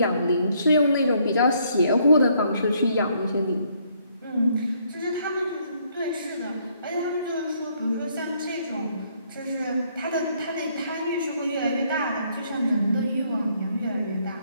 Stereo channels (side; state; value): both; inverted; correlation -0.69